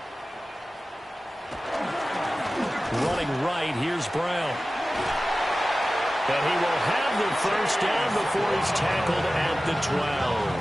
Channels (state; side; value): normal; both; correlation 0.96